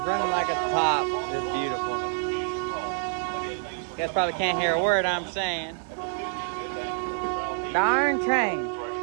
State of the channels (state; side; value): silent; left; 58 dB below the other